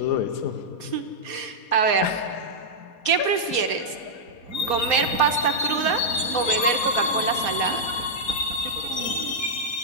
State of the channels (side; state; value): right; late; 4.2 ms